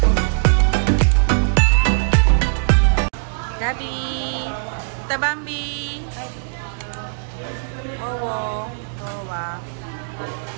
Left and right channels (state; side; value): silent; left; digital silence